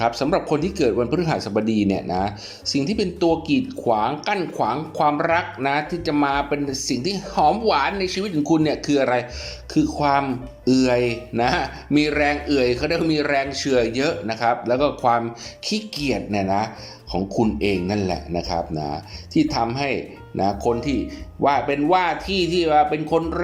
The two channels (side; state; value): both; identical; correlation 1.00